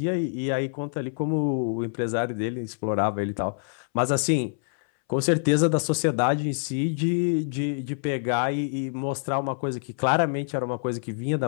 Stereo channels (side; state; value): right; silent; 61 dB below the other